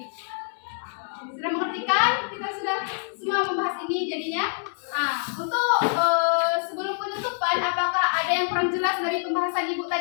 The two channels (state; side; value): silent; right; 61 dB below the other